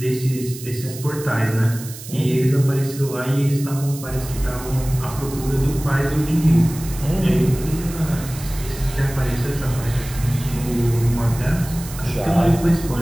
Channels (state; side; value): noise; right; hiss, 14 dB below the sound